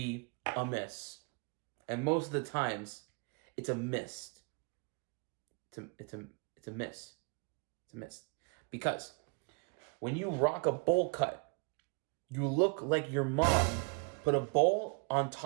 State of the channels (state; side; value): quieter; left; 36.0 dB